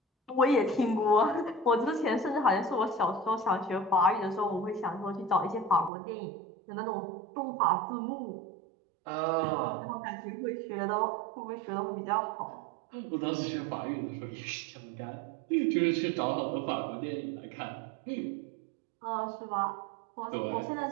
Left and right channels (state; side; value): drops out; left; at 5.9 s